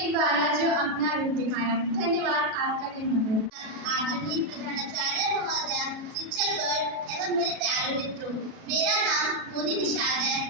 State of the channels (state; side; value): late; left; 37 ms